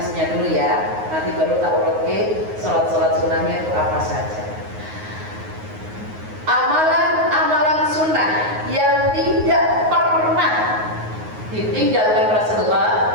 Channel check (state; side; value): late; left; 9.5 ms